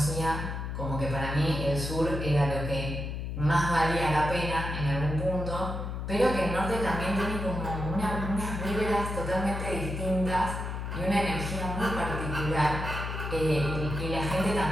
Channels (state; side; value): noise; left; hum, 4 dB below the sound